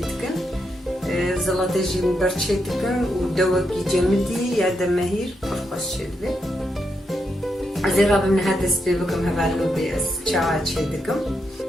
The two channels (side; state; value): both; normal; correlation 0.82